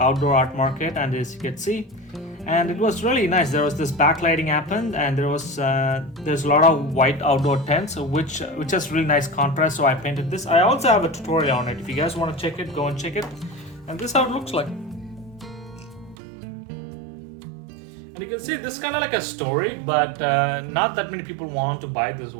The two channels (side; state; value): left; drops out; at 16.2 s